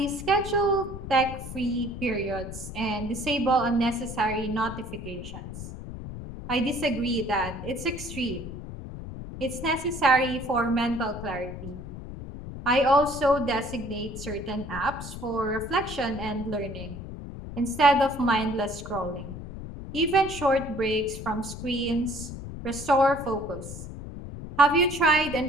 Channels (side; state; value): left; noise; rumble, 10 dB below the sound